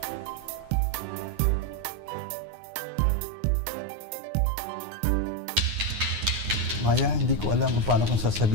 Maya, hindi ko alam kung paano kong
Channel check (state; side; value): late; left; 9.6 ms